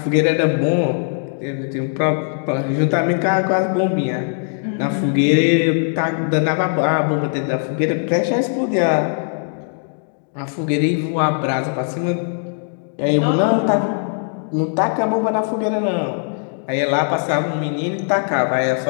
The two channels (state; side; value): silent; right; 66 dB below the other